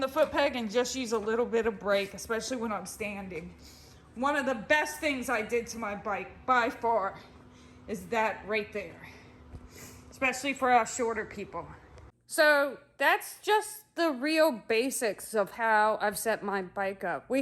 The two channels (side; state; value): both; identical; correlation 1.00